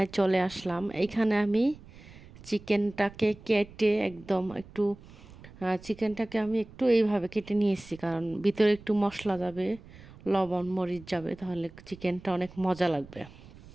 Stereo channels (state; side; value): noise; right; rumble, 20 dB below the sound